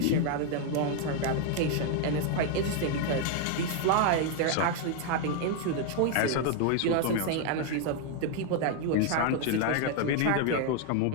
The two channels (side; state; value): both; different; correlation 0.00